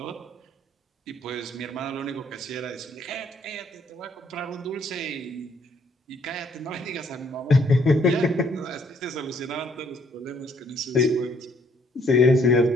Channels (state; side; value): normal; both; correlation 0.66